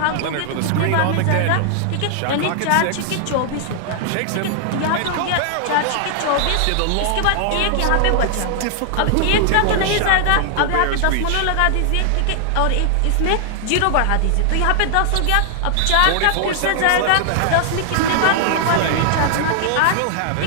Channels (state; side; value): different; both; correlation 0.00